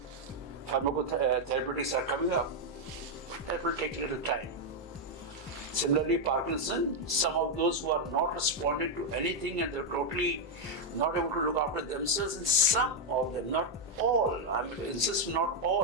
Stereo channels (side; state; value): both; normal; correlation 0.01